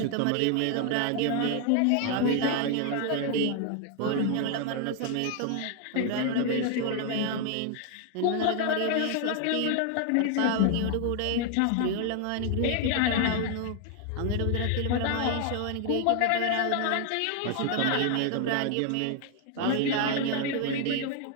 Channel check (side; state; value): both; different; correlation 0.00